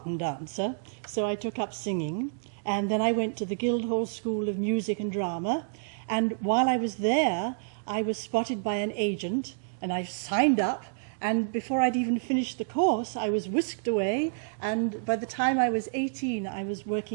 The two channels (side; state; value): left; silent; digital silence